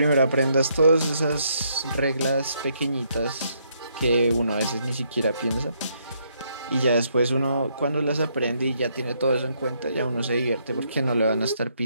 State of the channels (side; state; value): both; inverted; correlation -0.73